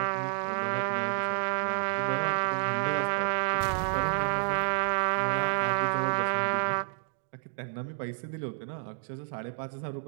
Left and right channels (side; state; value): left; silent; digital silence